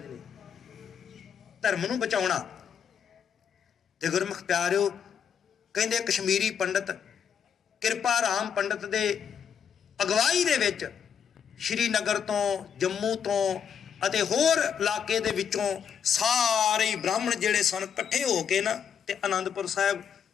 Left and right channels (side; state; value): right; quieter; 7.7 dB